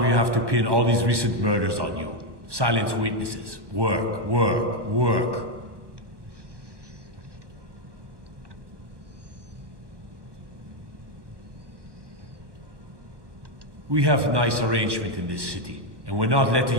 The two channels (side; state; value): left; late; 1.2 ms